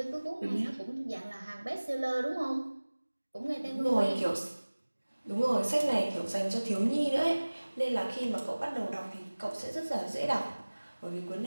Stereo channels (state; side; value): inverted; both; correlation -1.00